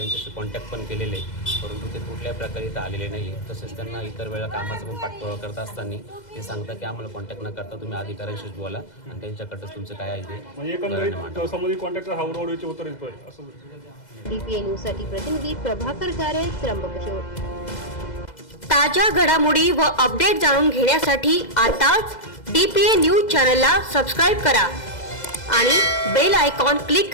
कॉन्टॅक्ट पण केलेले, परंतु ते कुठल्याही प्रकारे इथं आलेले नाही आहे। तसेच त्यांना इतर वेळेला कामाचा पण पाठपुरावा करत असताना ते सांगतात की आम्हाला कॉन्टॅक्ट न करता तुम्ही अधिकाऱ्यांशीच बोला आणि त्यांच्याकडं तुमचं काय आहे ते म्हणजे एकंदरीत संबंधित कॉन्टॅक्टर हा उडवडीचे उत्तर देतोय असं। DPA न्यूज साठी प्रतिनिधी प्रभाकर गारे, त्र्यंबकेश्वर। ताज्या घडामोडी व अपडेट जाणून घेण्यासाठी आताच DPA न्यूज चॅनलला सबस्क्राईब करा आणि बेल आयकॉन क्लिक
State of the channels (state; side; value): late; right; 2.0 ms